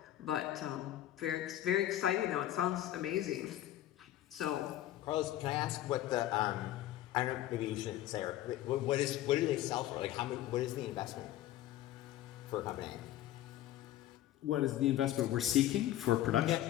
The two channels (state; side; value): quieter; right; 13.5 dB